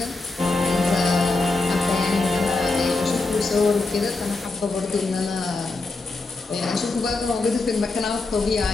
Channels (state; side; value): quieter; right; 3.4 dB